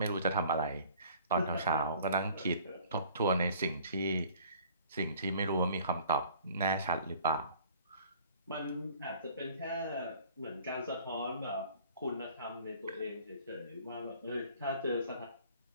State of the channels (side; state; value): both; inverted; correlation -0.52